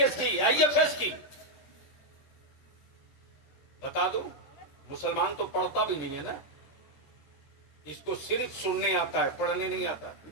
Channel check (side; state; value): right; late; 13 ms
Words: की, आईएफएस की। बता दो, मुसलमान तो पढ़ता भी नहीं है ना, इसको सिर्फ सुनने आता है, पढ़ने नहीं आता।